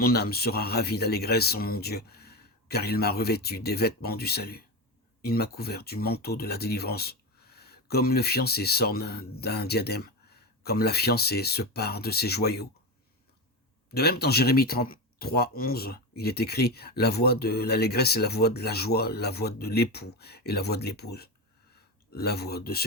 âme sera ravie d'allégresse en mon Dieu, car il m'a revêtu des vêtements du salut. Il m'a couvert du manteau de la délivrance, comme le fiancé s'orne d'un diadème, comme la fiancée se pare de ses joyaux. De même, dans Jérémie 33,11, il est écrit « La voix de l'allégresse est la voix de la joie, la voix de l'époux et la voix de l'épouse. La voix de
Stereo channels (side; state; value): both; normal; correlation 0.18